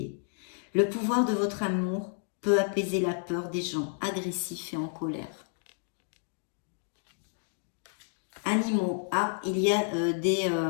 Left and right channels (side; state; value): right; silent; digital silence